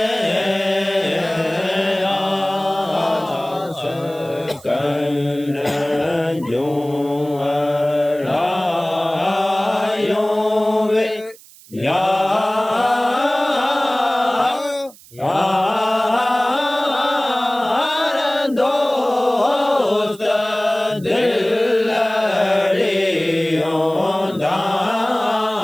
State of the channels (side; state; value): right; noise; hiss, 23 dB below the sound